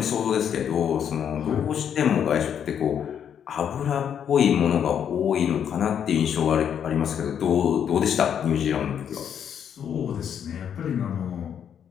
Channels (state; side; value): quieter; right; 8.6 dB